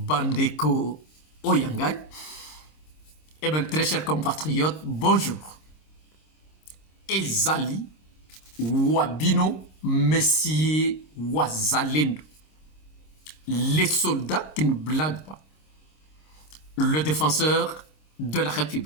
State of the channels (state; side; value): late; right; 26 ms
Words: oyangai. Eh bien, très chers compatriotes, bonjour. Ezali wabino messie wazalendo, les soldats qui ne blaguent pas, le défenseur de la